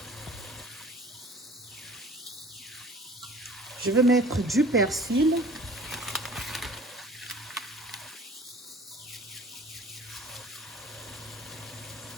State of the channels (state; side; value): normal; both; correlation 0.47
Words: Je vais mettre du persil.